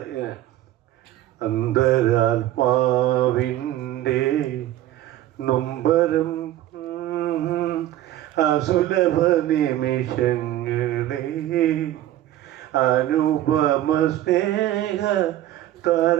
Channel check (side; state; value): left; quieter; 13.6 dB